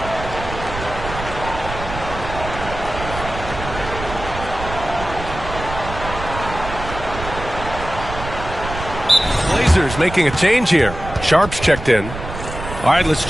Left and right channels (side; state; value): right; noise; rumble, 9 dB below the sound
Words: Blazers making a change here. Sharp's checked in. All right, let's